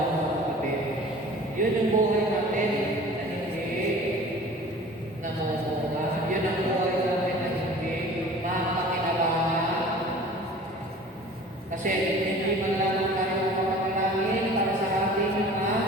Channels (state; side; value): normal; both; correlation 0.44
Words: kapatid? Yun ang buhay natin na hindi namumuha. Yun ang buhay natin na hindi mapakinabangan. Kasi hindi man lang tayo mapanalangin para sa ating mga